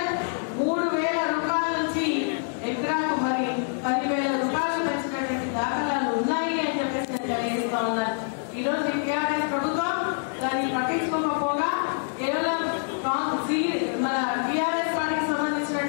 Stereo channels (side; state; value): right; silent; digital silence